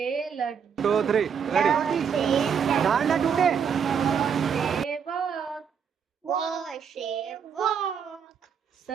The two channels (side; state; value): left; quieter; 7.1 dB